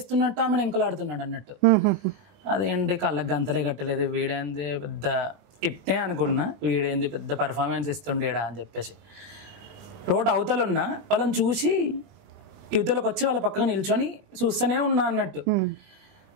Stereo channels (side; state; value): left; late; 20 ms